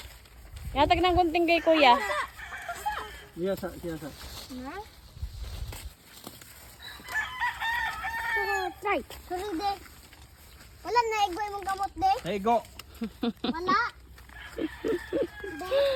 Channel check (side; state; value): both; identical; correlation 1.00